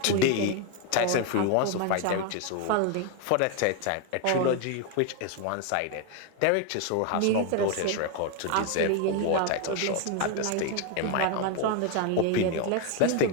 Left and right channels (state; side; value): different; both; correlation 0.01